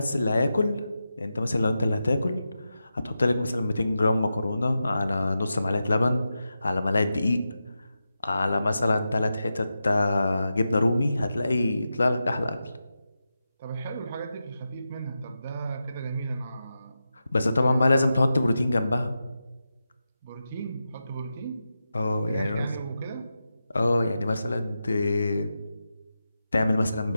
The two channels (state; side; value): inverted; both; correlation -0.90